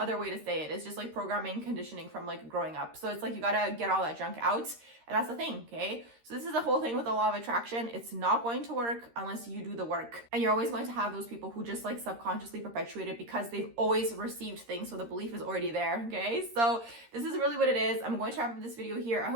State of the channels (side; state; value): left; late; 13 ms